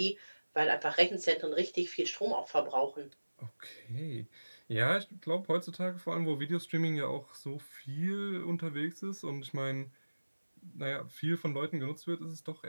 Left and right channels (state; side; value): inverted; both; correlation -1.00